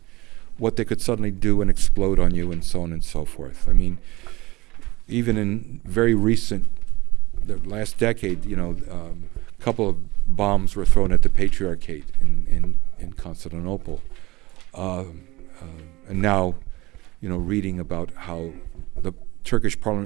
what they could suddenly do and explode on you, and so on and so forth. I mean, even in very recent, the last decade, a couple of bombs were thrown at the Patriarchate in Constantinople. And now, reading about how the Turkish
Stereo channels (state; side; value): quieter; left; 20.7 dB